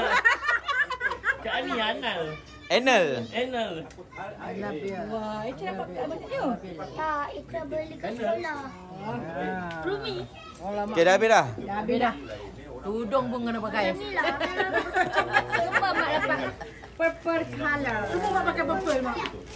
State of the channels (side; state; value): both; identical; correlation 1.00